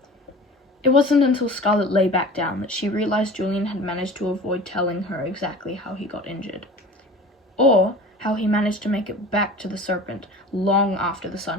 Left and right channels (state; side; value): normal; both; correlation 0.39